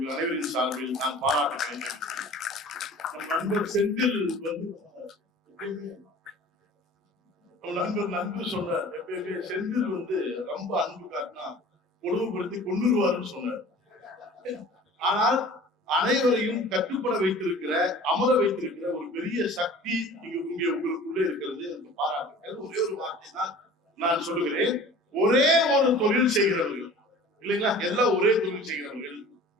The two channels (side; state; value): both; normal; correlation 0.44